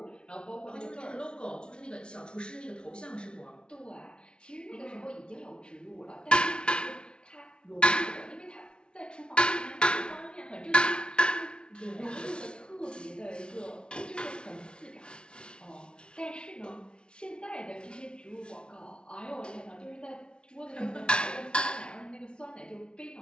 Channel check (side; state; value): right; late; 0.056 ms